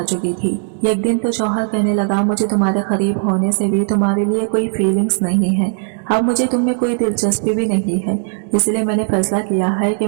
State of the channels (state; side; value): silent; left; digital silence